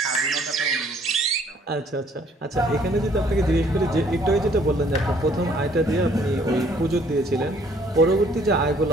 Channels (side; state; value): both; normal; correlation 0.61